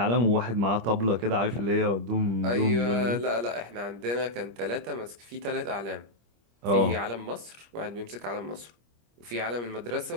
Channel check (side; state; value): left; late; 25 ms